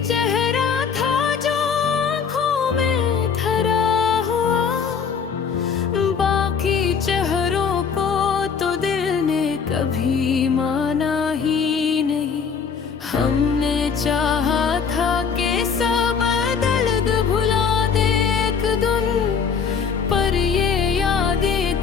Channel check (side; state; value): right; quieter; 6.3 dB